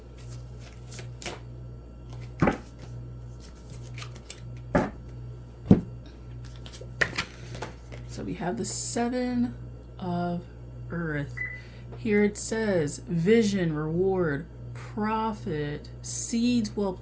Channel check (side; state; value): both; identical; correlation 1.00